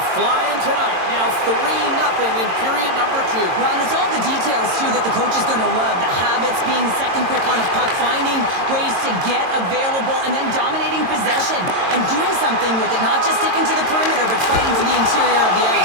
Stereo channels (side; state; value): left; late; 22 ms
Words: flying tonight. Now 3-0 in period number 2. Well, and it's all the details, too, that the coach is going to love. The habits, being second quick on a puck, finding ways to get available, and then dominating possession and doing something with it. Not just sticking to the perimeter, but fighting for the interior of the